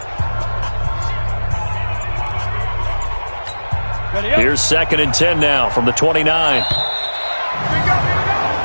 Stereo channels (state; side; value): inverted; both; correlation -1.00